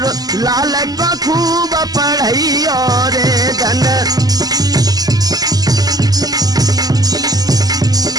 लाल को खूब पढ़ई और धन।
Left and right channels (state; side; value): late; left; 0.18 ms